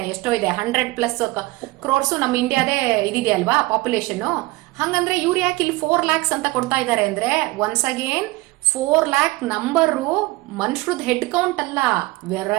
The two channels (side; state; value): left; quieter; 21.6 dB